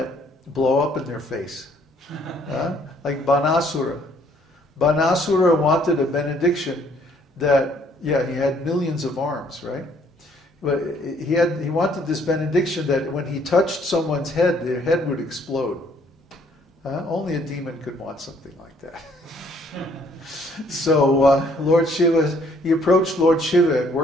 blow up in their face. Like Banasura. Banasura wanted a benediction that, he had millions of arms, right? But he wanted this benediction that when he touched someone's head, their head would explode. Only a demon could want something like that. So Lord Shiva, he approached Lord Shiva and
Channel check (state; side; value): normal; both; correlation 0.64